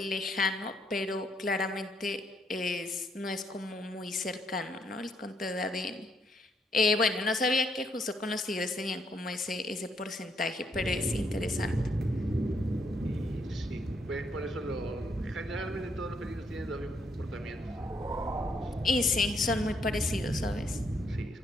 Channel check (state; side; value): normal; both; correlation 0.73